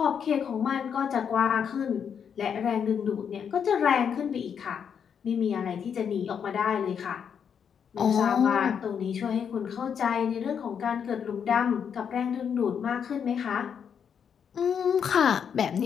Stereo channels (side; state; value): right; quieter; 7.5 dB